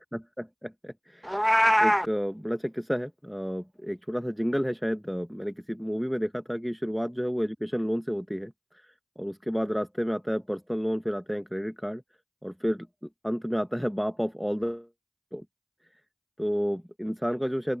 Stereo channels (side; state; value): both; identical; correlation 1.00